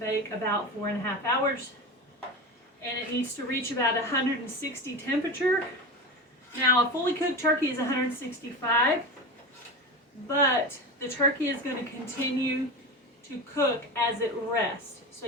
about 4.5 hours. And it needs to reach about 160 temperature. Now, a fully cooked turkey is 165, but the turkey is going to continue to cook as it rests. So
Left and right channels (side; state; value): both; normal; correlation 0.25